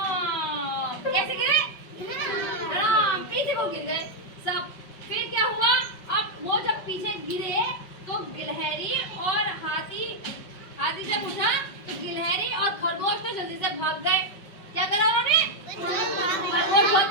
कैसे गिरे? पीछे को गिर गए सब। फिर क्या हुआ? अब वो जब पीछे गिरे तो गिलहरी और हाथी जब उठा तो गिलहरी और खरगोश तो जल्दी से भाग गए। क्या करा उन्होंने? खरगोश बहुत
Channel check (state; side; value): late; right; 5.4 ms